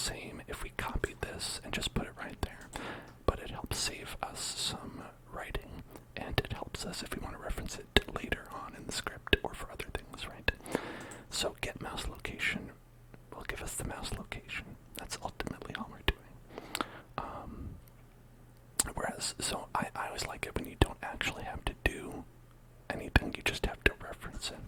if we copied this and just put it right there, but it helps save us some writing, and it helps us if we want to reference it later on in the script or for other things, right? So get mouse location will give us the mouse location. That's ultimately all we're doing. So I always like it when you don't actually have to do anything, you just have to reference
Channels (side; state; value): both; identical; correlation 1.00